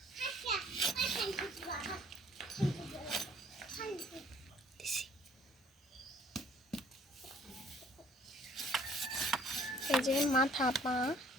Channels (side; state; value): both; normal; correlation 0.57